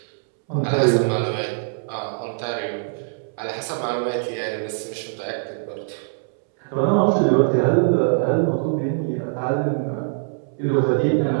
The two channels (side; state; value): left; silent; 64 dB below the other